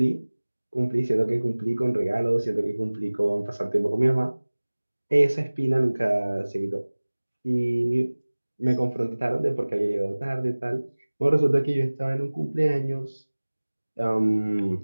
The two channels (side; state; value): both; inverted; correlation -1.00